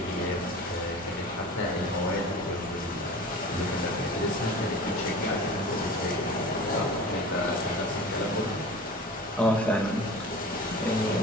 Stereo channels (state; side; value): normal; both; correlation 0.37